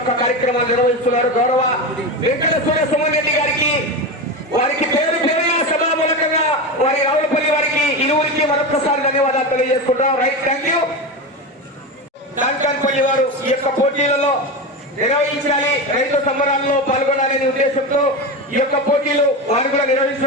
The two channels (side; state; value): both; normal; correlation 0.20